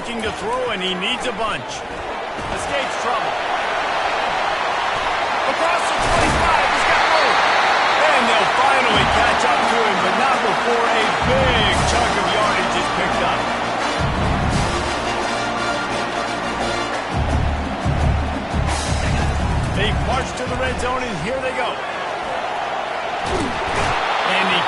to throw, and he needs a bunch. Escapes trouble. Across the 25, he's got room. And they'll finally catch up to him, but not before a big chunk of yardage is picked up. They march to the red zone, and here they go. And he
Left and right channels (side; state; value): both; identical; correlation 1.00